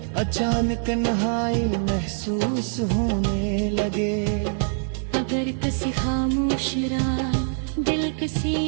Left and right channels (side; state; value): left; silent; digital silence